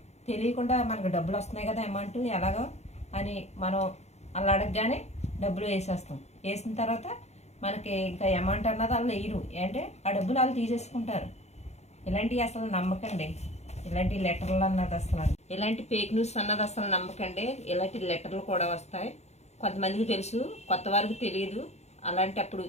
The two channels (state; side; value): late; right; 0.32 ms